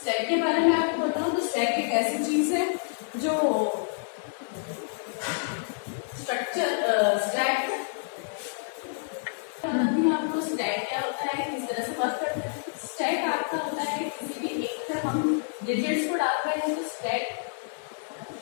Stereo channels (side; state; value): right; silent; digital silence